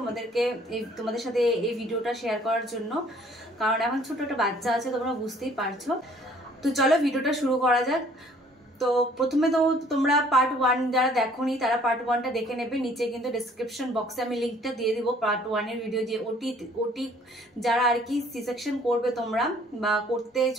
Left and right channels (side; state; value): both; normal; correlation 0.57